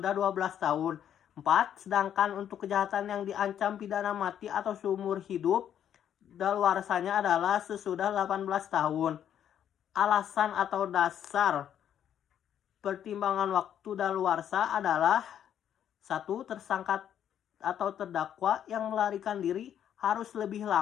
12 tahun. 4. Sedangkan untuk kejahatan yang diancam pidana mati atau seumur hidup, daluarsanya adalah sesudah 18 tahun. Alasan atau dasar pertimbangan waktu daluarsa adalah 1. Tersangka atau terdakwa yang melarikan diri harus lebih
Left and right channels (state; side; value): quieter; right; 9.7 dB